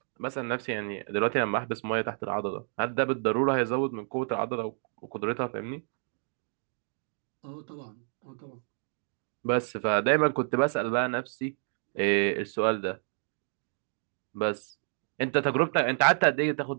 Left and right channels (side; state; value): left; silent; 58 dB below the other